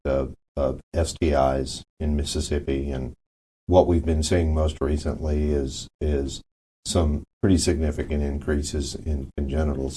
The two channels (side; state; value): both; identical; correlation 1.00